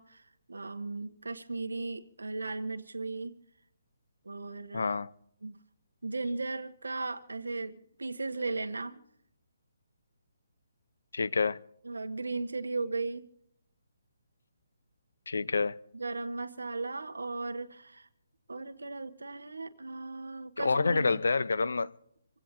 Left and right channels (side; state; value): both; inverted; correlation -0.91